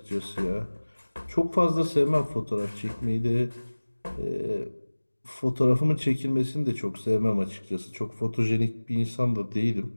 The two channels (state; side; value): inverted; both; correlation -1.00